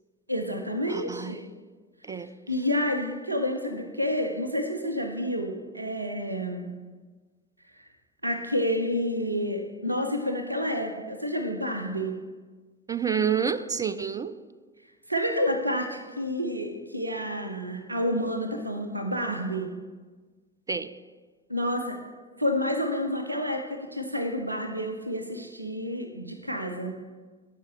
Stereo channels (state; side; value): inverted; both; correlation -0.36